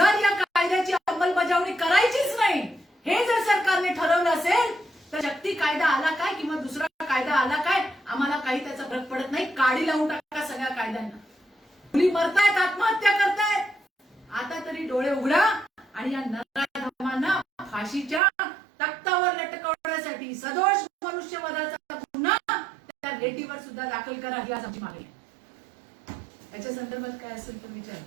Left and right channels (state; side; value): drops out; left; at 18.2 s